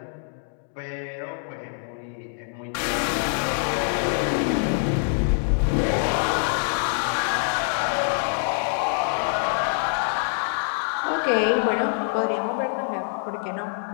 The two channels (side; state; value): right; silent; 62 dB below the other